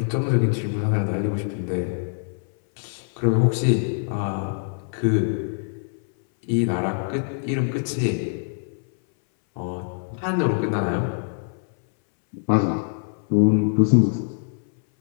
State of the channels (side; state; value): right; silent; 61 dB below the other